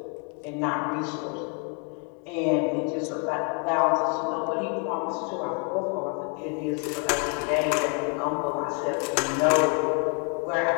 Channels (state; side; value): quieter; right; 36.6 dB